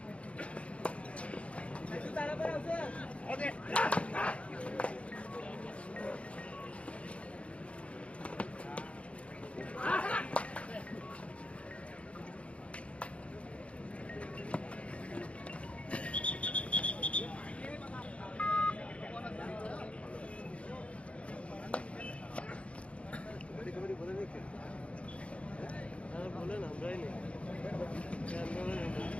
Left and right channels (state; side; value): late; right; 0.061 ms